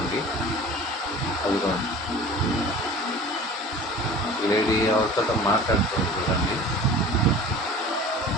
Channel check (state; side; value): normal; both; correlation 0.42